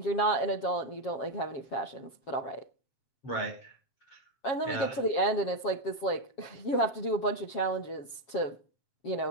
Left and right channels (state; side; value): late; right; 7.3 ms